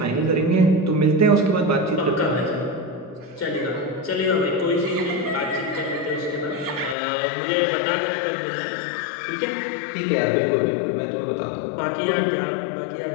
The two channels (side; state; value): right; drops out; at 7.0 s